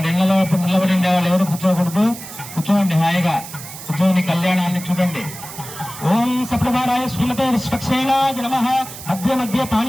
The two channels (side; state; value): right; noise; hiss, 13 dB below the sound